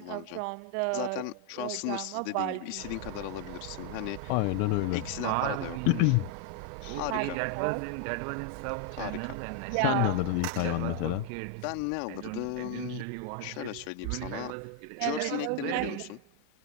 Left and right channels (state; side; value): different; both; correlation 0.00